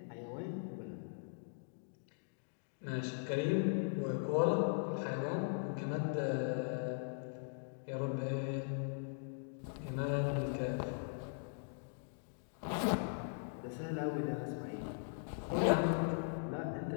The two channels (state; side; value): silent; right; digital silence